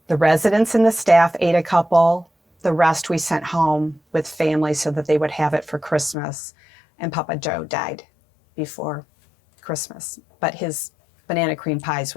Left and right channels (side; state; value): right; drops out; at 6.2 s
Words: The residents and the staff ate a couple. The rest we sent home with family so that they would have it for Christmas. And Papa Joe died before Christmas, but his banana cream pies